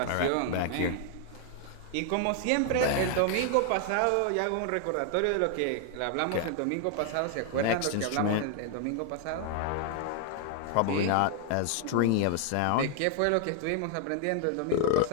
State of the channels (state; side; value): different; both; correlation 0.00